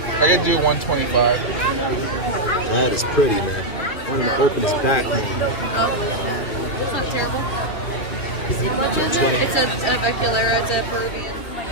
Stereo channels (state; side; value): late; right; 2.8 ms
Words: I can do 125. That is pretty, man. One of the openest back more. It's not terrible. 20. It's a Veculaira, it's a Peruvian.